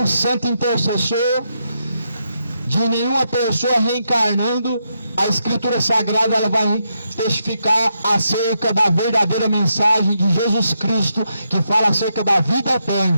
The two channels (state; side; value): inverted; both; correlation -0.82